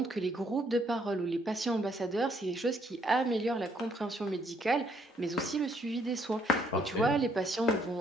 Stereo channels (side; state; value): both; normal; correlation 0.69